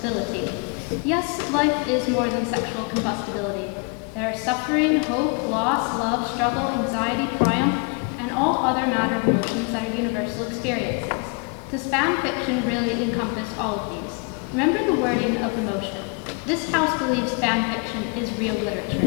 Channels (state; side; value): quieter; right; 34.8 dB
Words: Yes, life is more than sexual combustibility. There are suffering, hope, loss, love, struggle, anxiety, triumph, and all other matter of emotions that are universal experiences. Does fan fiction really encompass all of these? Remember the wording of the motion. This house believes fan fiction is real